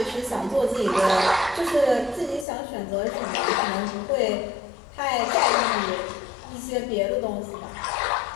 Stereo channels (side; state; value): right; drops out; at 2.5 s